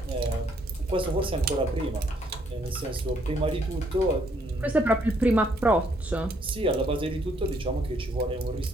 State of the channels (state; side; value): normal; both; correlation 0.69